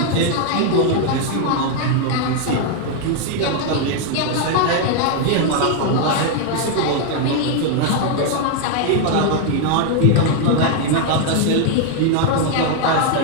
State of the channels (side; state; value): both; different; correlation 0.00